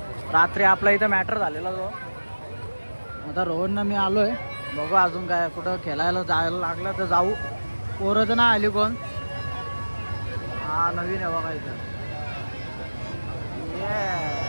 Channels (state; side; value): inverted; both; correlation -1.00